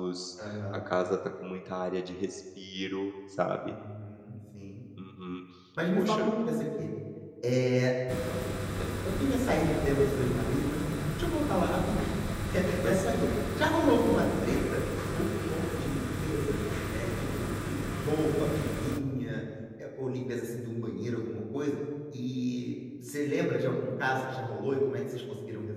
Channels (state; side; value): identical; both; correlation 1.00